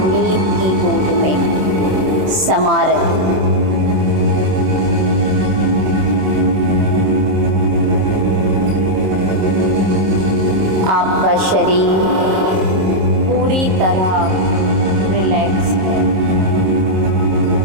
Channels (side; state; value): left; late; 27 ms